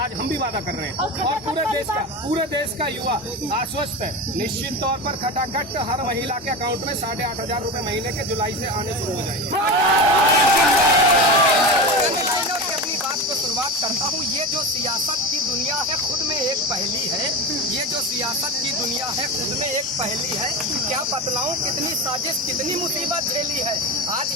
हम भी वादा कर रहे हैं और पूरे देश का युवा आश्वस्त है। निश्चित तौर पर खटाखट हर महिला के अकाउंट में 8,500 रुपए महीने के जुलाई से आने शुरू हो जाएंगे। शुरुआत करता हूँ। ये जो सियासत की दुनिया है खुद में एक पहेली है, ये जो सियासत की दुनिया है खुद में एक पहेली है। क्या बतलाऊं कितनी साजिश कितनी मुसीबत झेली है। आज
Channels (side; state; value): both; normal; correlation 0.23